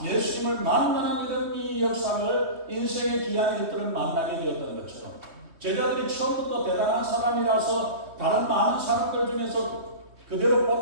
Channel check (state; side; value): late; left; 3.2 ms